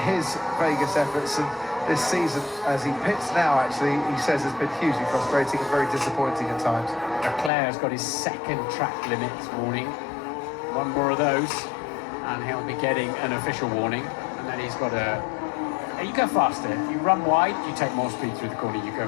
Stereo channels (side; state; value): right; drops out; at 7.5 s